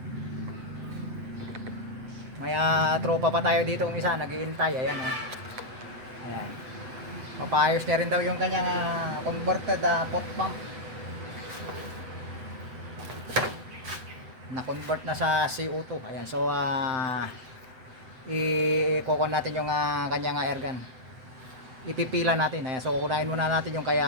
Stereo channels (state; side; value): late; left; 7.9 ms